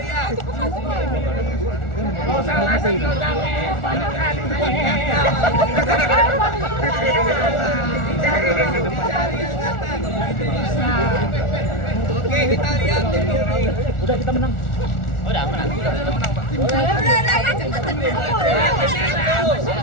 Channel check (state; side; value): late; right; 1.4 ms